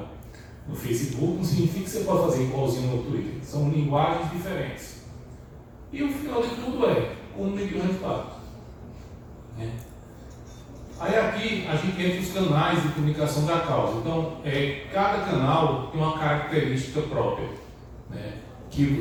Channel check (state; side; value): identical; both; correlation 1.00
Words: no Facebook não significa que você pode fazer igualzinho no Twitter. São linguagens diferentes. E o final de tudo é como medir o resultado. Né? Aí aqui a gente entra os canais de comunicação da causa. Então, cada canal tem uma característica própria, né?